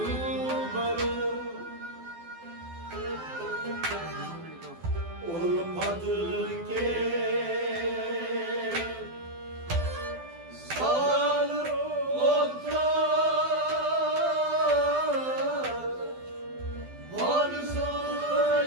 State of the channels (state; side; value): late; left; 12 ms